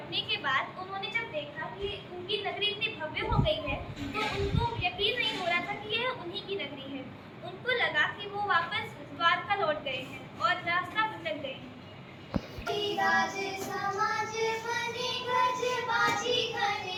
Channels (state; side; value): identical; both; correlation 1.00